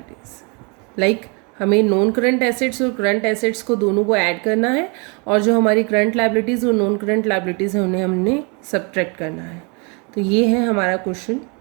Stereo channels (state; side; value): quieter; left; 32.9 dB